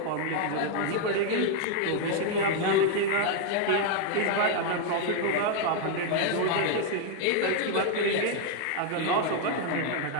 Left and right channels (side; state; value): both; different; correlation 0.00